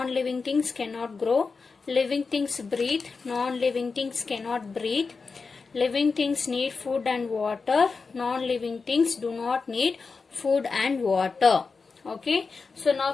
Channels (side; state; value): right; quieter; 4.6 dB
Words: things cannot grow, living things breathe, non-living things cannot breathe, living things need food and water, non-living things do not need food and water. Okay, so now